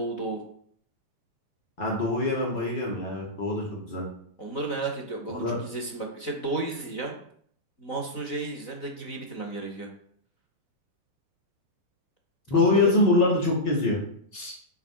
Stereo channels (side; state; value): right; late; 4.0 ms